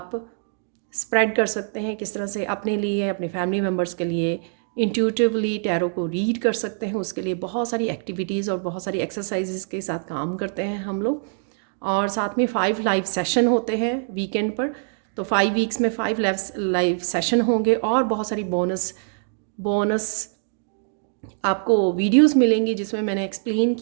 स्प्रेड कर सकते हैं, किस तरह से अपने लिए, अपने फैमिली मेम्बर्स के लिए इंट्यूटिवली टैरो को रीड कर सकते हैं, उसके लिए बहुत सारी एक्टिविटीज़ और बहुत सारी एक्सरसाइजेस के साथ काम करते हैं हम लोग। और साथ में 5 लाइव सेशन होते हैं वीकेंड पर। तो 5 वीक्स में 5 लाइव सेशन होंगे और बहुत सारी बोनस बोनस आपको वीडियोस मिलेंगी, जिसमें मैंने एक्सप्लेन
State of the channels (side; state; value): left; silent; 63 dB below the other